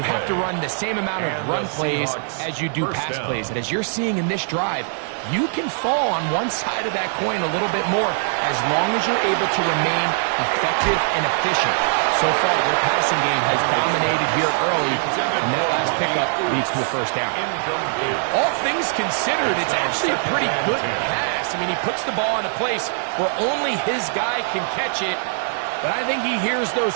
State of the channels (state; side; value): silent; left; digital silence